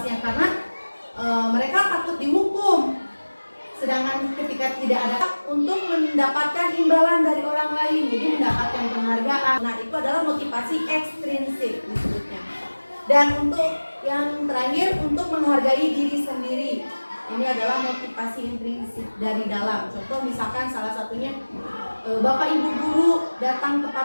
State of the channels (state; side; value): inverted; both; correlation -1.00